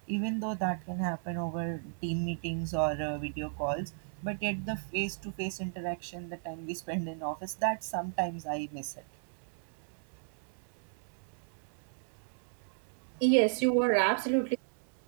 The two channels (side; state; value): left; silent; digital silence